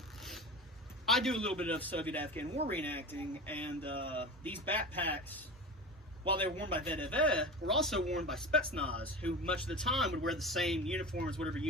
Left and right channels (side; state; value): both; normal; correlation 0.30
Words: I do a little bit of Soviet-Afghan war reenacting, and these backpacks, while they were worn by VDV, were also worn by Spetsnaz, who much of the time would wear the same uniform as whatever